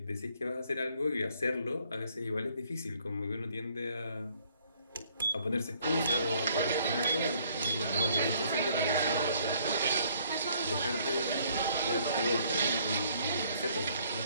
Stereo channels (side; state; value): both; inverted; correlation -0.64